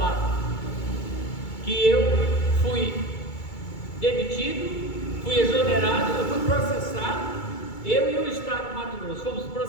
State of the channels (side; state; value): right; late; 2.3 ms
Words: que eu fui demitido, fui exonerado, eu fui processado, eu e o Estado de Mato Grosso fomos